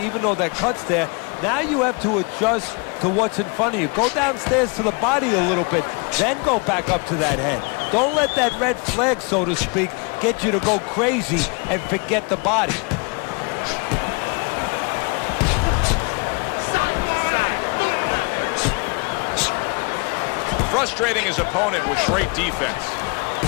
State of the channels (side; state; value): right; quieter; 32.1 dB